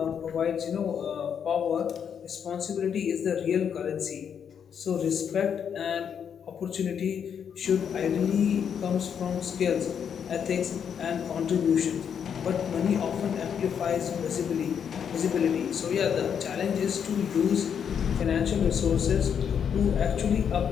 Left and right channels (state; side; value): quieter; right; 7.8 dB